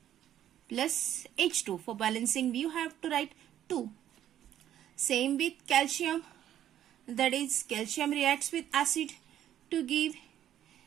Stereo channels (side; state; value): left; quieter; 11.3 dB